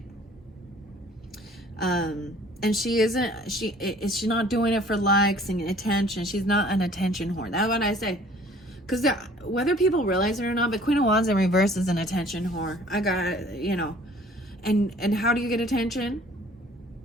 And she's not doing it for likes and attention. She's not an attention whore. That's what I say. Because whether people realize it or not, but Queen of Wands in reverse is an attention whore. I got, you know. And how do you get attention?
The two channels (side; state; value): both; normal; correlation 0.53